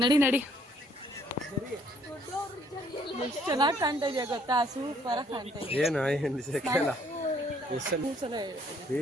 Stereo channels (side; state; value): both; normal; correlation 0.64